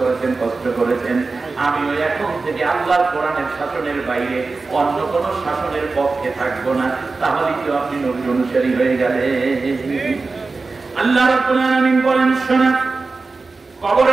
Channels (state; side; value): quieter; left; 3.9 dB